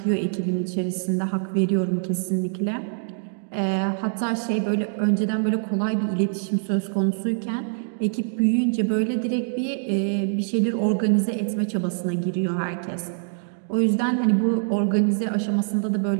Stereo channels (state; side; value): silent; left; digital silence